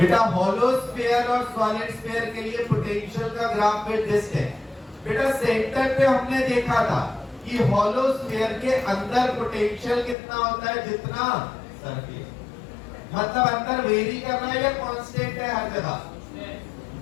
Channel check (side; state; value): right; drops out; at 10.2 s